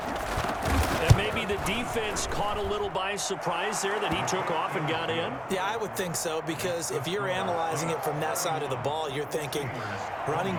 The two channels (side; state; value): both; identical; correlation 1.00